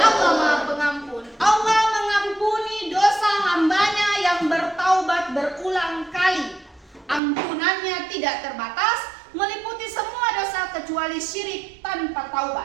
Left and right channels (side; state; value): left; drops out; at 7.2 s